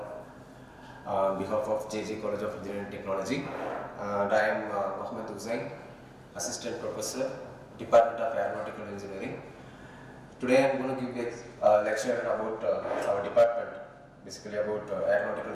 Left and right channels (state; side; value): identical; both; correlation 1.00